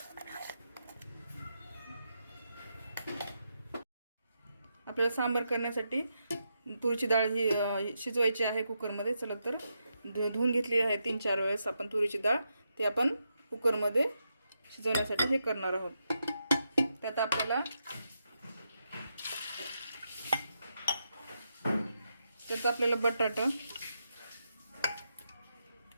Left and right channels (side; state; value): both; inverted; correlation -0.84